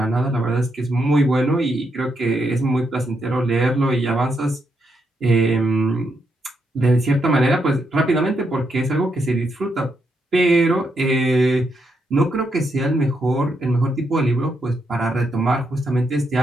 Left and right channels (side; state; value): both; normal; correlation 0.80